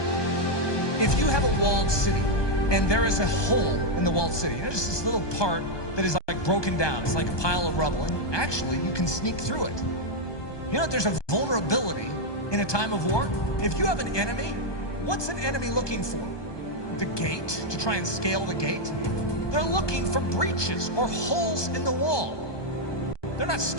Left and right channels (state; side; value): late; right; 1.2 ms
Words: If you have a walled city and there is a hole in the walled city, just this little part that is like broken down, it's like a pile of rubble, and actually you can sneak through it. You know, there's a vulnerability in a time of war. If you have an enemy, what's an enemy looking for? The gate, to try and scale the gate? They're looking for breaches or holes in the wall. They're not